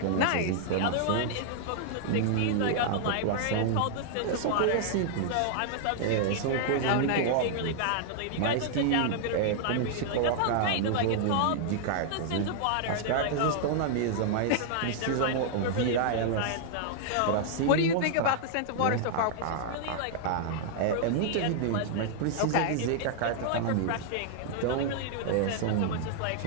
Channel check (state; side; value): different; both; correlation -0.01